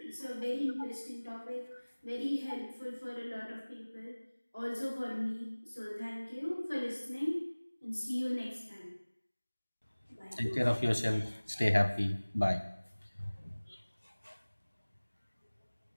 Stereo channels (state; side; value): inverted; both; correlation -1.00